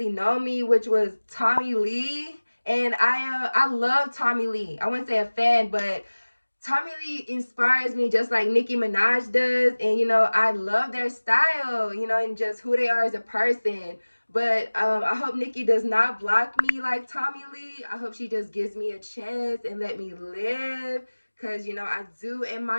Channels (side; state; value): both; inverted; correlation -1.00